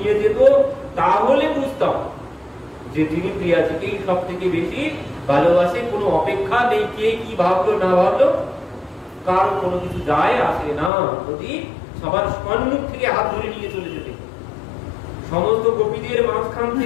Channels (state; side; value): drops out; right; at 10.9 s